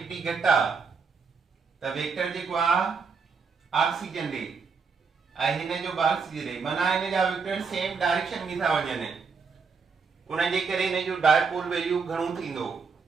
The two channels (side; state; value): left; quieter; 5.3 dB